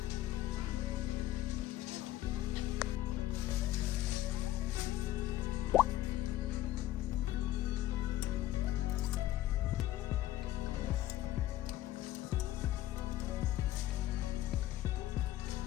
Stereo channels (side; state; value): right; quieter; 14.3 dB